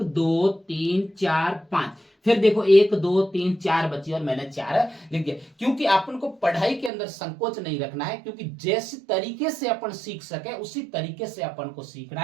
2 3 4 5। फिर देखो 1 2 3 4 बची और मैंने 4 लिख दिया, क्योंकि अपन को पढ़ाई के अंदर संकोच नहीं रखना है, क्योंकि जैसे तरीके से अपन सीख सके उसी तरीके से अपन को सीखना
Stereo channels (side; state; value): left; drops out; at 6.9 s